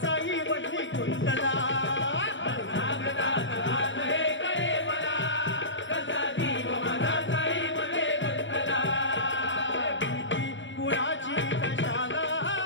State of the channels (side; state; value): right; late; 0.54 ms